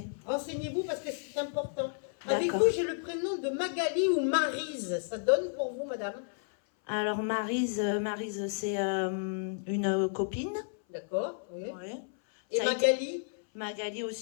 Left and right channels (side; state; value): right; silent; 56 dB below the other